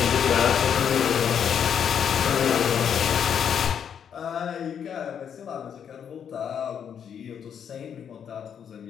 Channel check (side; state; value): right; quieter; 8.1 dB